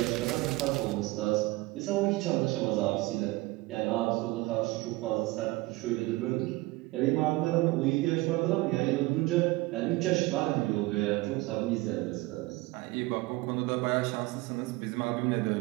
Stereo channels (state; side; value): quieter; left; 21.3 dB